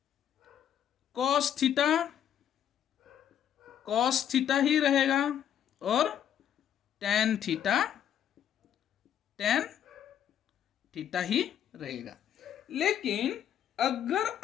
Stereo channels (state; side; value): quieter; right; 9.7 dB